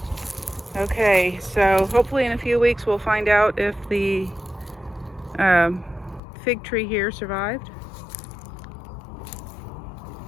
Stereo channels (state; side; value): drops out; right; at 6.2 s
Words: Okay, so hopefully in a few weeks we'll find out if the fig tree here survived.